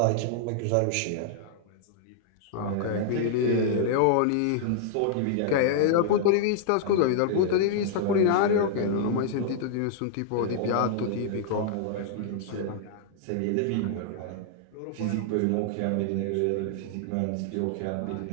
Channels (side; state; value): both; different; correlation -0.01